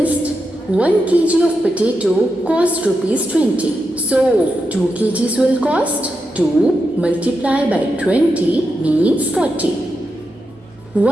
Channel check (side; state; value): both; normal; correlation 0.87